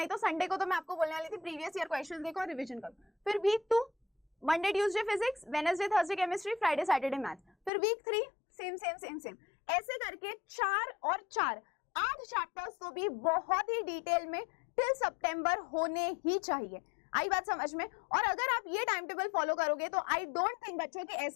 तो संडे को तो मैं आपको बोलने वाली थी प्रीवियस ईयर क्वेश्चंस देखो और रिवीजन करो। फिर week 2 Monday Tuesday physics, Wednesday Thursday chemistry, Friday Saturday maths. फिर week 3 same same same same, ऐसे करके 4 और 4 8 चैप्टर्स तो भी बहुत ही डिटेल में टिल सितंबर होने ही चाहिए। आई बात समझ में? और अगर आप ये टाइम टेबल फॉलो करोगे तो आई डोंट थिंक बच्चों कि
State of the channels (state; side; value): drops out; right; at 7.7 s